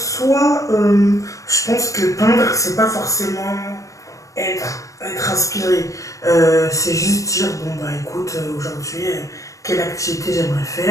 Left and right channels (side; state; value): right; late; 0.16 ms